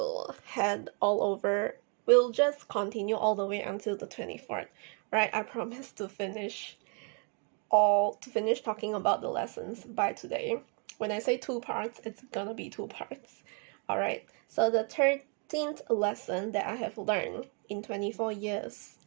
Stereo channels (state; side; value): quieter; left; 36.9 dB